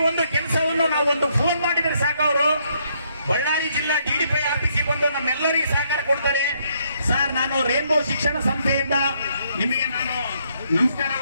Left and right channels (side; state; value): both; inverted; correlation -0.72